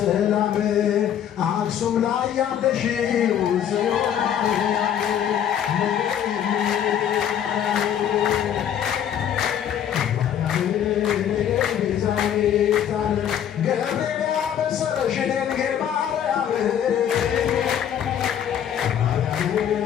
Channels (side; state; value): right; quieter; 9.5 dB